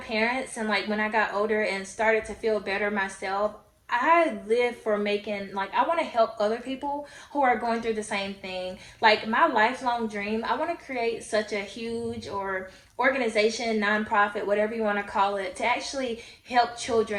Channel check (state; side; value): identical; both; correlation 1.00